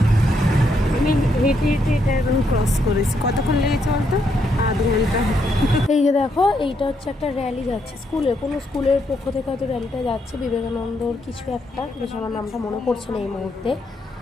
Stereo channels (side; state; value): both; normal; correlation 0.76